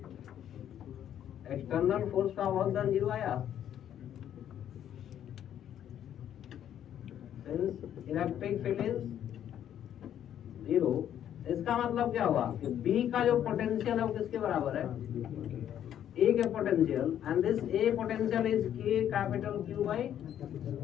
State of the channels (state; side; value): quieter; right; 10.3 dB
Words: एक्सटर्नल फोर्स का वर्क डन जीरो आया। Electric field is zero. इसका मतलब क्या हुआ कि बी का जो पोटेंशियल है वो किसके बराबर है? ए के potential, and this A potential is के कैपिटल क्यू बाई